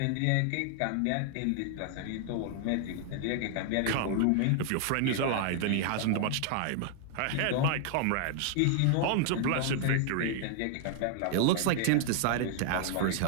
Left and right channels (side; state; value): both; different; correlation 0.00